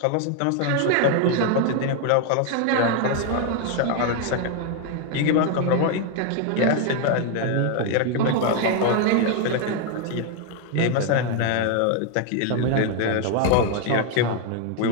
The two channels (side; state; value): both; different; correlation 0.00